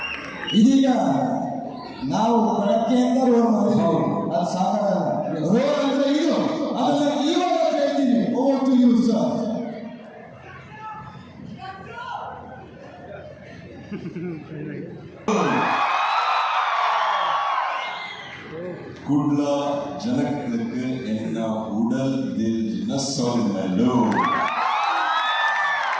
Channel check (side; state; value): both; identical; correlation 1.00